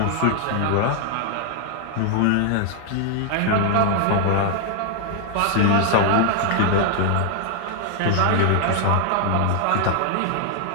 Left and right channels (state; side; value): different; both; correlation 0.00